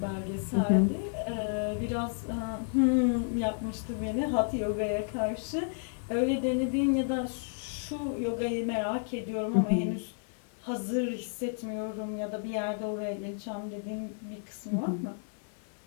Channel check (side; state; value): right; silent; digital silence